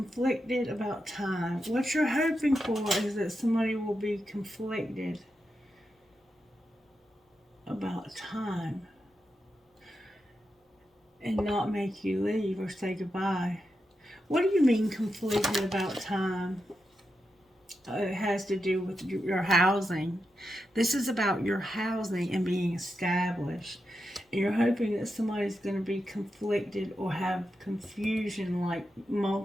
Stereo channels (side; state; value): both; normal; correlation 0.87